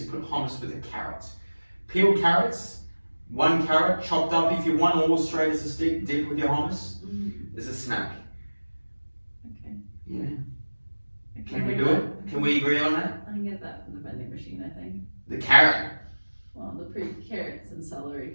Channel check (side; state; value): both; inverted; correlation -1.00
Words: put hummus with a carrot. Peeled carrots, 1 carrot chopped up if you want, or straight as a stick, dip with your hummus. As a snack. Okay. Yeah. Can we do it? Can we agree on that? I can get that from the vending machine, I think. The carrot. Well, the carrots and celery